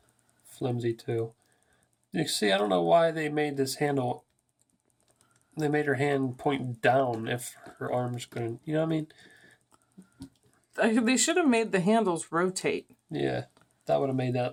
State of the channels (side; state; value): both; identical; correlation 1.00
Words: flimsy too. You see, I don't know why they made this handle. They made her hand point down if her arms couldn't. You know what I mean? They should have made the handles rotate. Yeah, that would have made